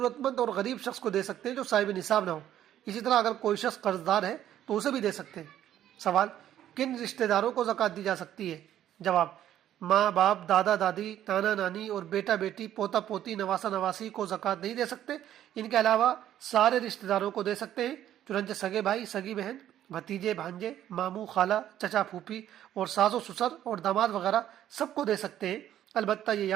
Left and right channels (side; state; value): left; quieter; 11.5 dB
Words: مند اور غریب شخص کو دے سکتے ہیں جو صاحب نصاب نہ ہو۔ اسی طرح اگر کوئی شخص قرض دار ہے تو اسے بھی دے سکتے ہیں۔ سوال، کن رشتہ داروں کو زکوٰۃ دی جا سکتی ہے؟ جواب، ماں باپ، دادا دادی، نانا نانی اور بیٹا بیٹی، پوتا پوتی، نواسا نواسی کو زکوٰۃ نہیں دے سکتے۔ ان کے علاوہ سارے رشتہ داروں کو دے سکتے ہیں، چنانچہ سگے بھائی، سگی بہن، بھتیجے، بھانجے، ماموں، خالہ، چچا، پھوپھی اور ساس و سسر اور داماد وغیرہ سب کو دے سکتے ہیں۔ البتہ یہ